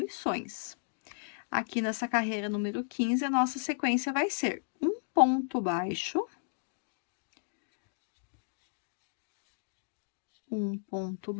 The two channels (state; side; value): silent; right; digital silence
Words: Aqui nessa carreira número 15, a nossa sequência vai ser um ponto baixo, um ponto